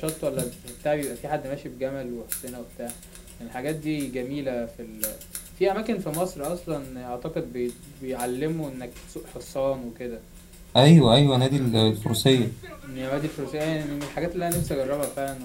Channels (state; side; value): identical; both; correlation 1.00